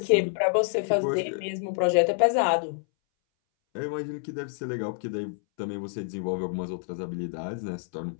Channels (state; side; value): silent; right; 59 dB below the other